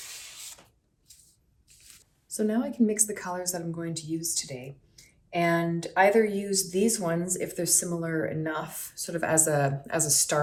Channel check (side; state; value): both; identical; correlation 1.00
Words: So now I can mix the colors that I'm going to use today and either use these ones if they're similar enough, sort of as a